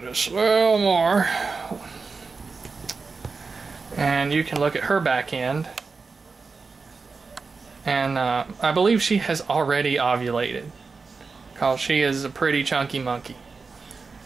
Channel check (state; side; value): quieter; left; 4.5 dB